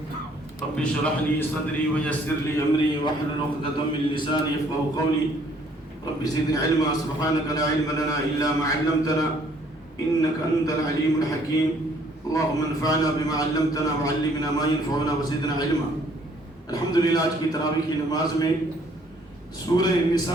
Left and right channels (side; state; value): both; normal; correlation 0.62